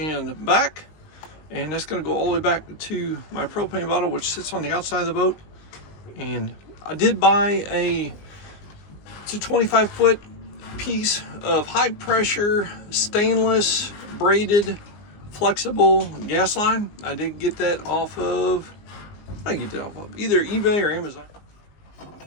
back, and that's gonna go all the way back to my propane bottle, which sits on the outside of the boat. And I did buy it's a 25-foot piece of high pressure stainless braided flexible gas line. I did get that off of, I get that off of either eBay or Amazon.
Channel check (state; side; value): late; right; 19 ms